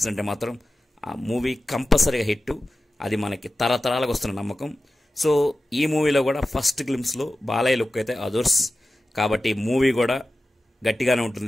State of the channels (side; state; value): both; normal; correlation 0.95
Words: మాత్రం ఆ మూవీ కంపల్సరీగా హిట్. అది మనకి తరతరాలకు వస్తున్న నమ్మకం. సో ఈ మూవీలో కూడా ఫస్ట్ గ్లిమ్స్లో బాలయ్య లుక్ అయితే అదర్స్, కాబట్టి మూవీ కూడా గట్టిగానే